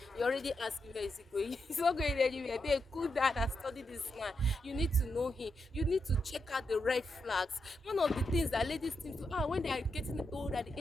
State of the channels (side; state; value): both; normal; correlation 0.85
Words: You already asking where is it going? It's not going anywhere. They cool down and study this man. You need to know him. You need to check out the red flags. One of the things that ladies think to when they are getting old at the